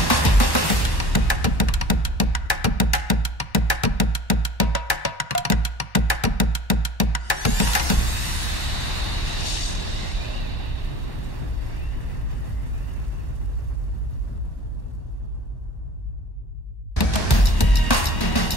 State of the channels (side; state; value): right; late; 1.1 ms